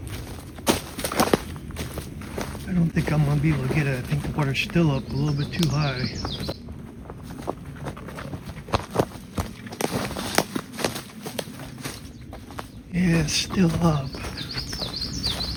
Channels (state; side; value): identical; both; correlation 1.00